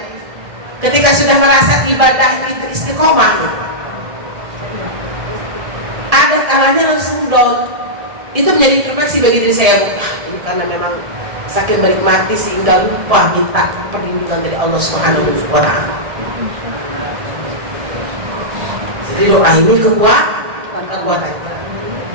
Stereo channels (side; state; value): left; late; 1.8 ms